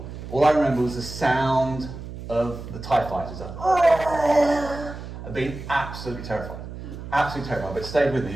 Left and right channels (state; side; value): noise; right; hum, 11 dB below the sound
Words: All I remember was the sound of the TIE fighters. I've been absolutely terrified. Absolutely terrified, but it stayed with me.